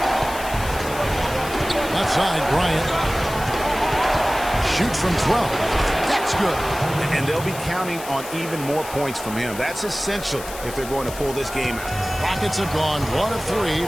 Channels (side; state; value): left; noise; hiss, 12 dB below the sound